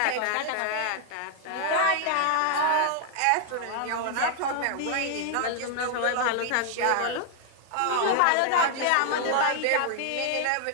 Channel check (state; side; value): different; both; correlation 0.00